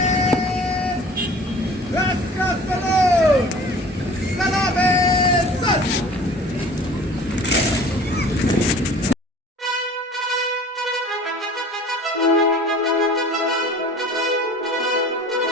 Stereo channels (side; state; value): both; normal; correlation 0.45